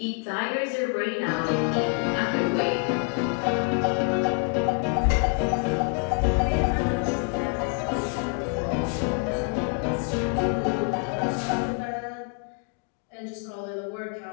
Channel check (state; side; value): quieter; right; 37.5 dB